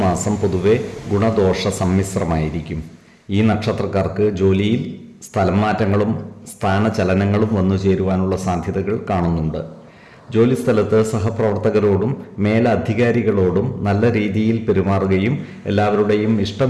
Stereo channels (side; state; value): both; identical; correlation 1.00